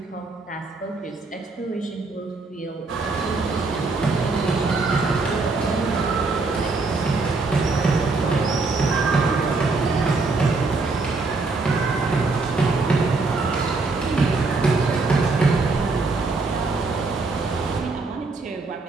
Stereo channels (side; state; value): left; quieter; 3.8 dB